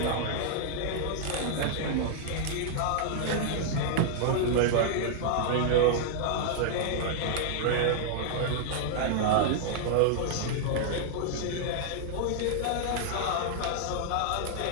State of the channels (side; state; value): both; different; correlation -0.01